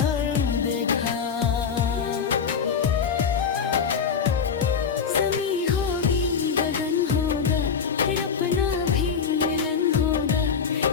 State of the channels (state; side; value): quieter; right; 6.4 dB